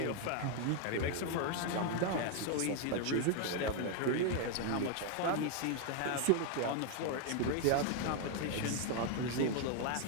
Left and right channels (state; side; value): different; both; correlation 0.00